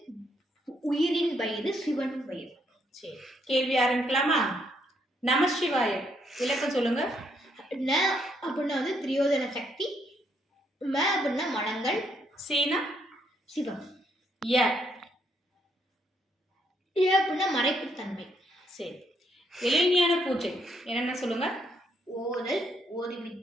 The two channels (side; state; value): both; normal; correlation 0.73